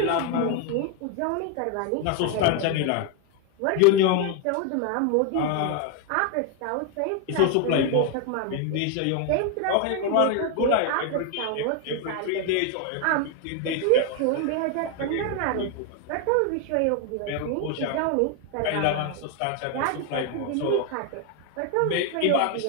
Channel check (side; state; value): both; different; correlation 0.01